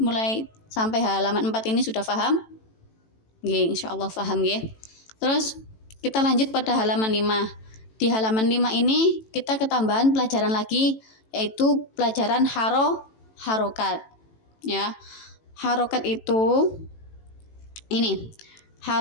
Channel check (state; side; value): late; right; 18 ms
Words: sampai halaman 4 ini sudah paham? Nggih, insyaallah paham nggih. Terus kita lanjut pada halaman 5. Di halaman 5 ini kita ketambahan pelajaran lagi, yaitu pelajaran harokat ya. Harokat itu ini